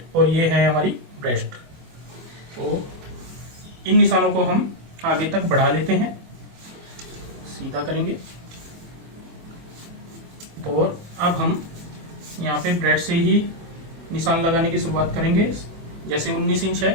और ये है हमारी ब्रेस्ट। तो इन निशानों को हम आगे तक बढ़ा लेते हैं, सीधा करेंगे। और अब हम यहाँ पे ब्रेस्ट से ही निशान लगाने की शुरुआत करेंगे। जैसे 19 इंच है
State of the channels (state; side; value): late; left; 24 ms